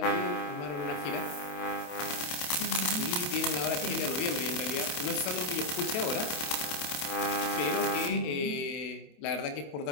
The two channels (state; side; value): late; right; 28 ms